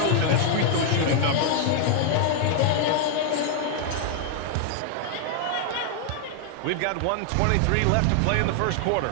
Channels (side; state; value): both; different; correlation 0.00